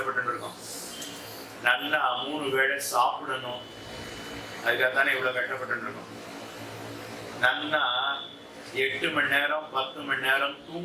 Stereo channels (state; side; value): identical; both; correlation 1.00